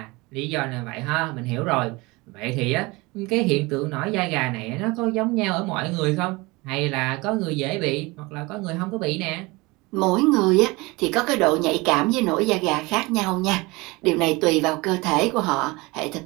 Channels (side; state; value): left; quieter; 23.8 dB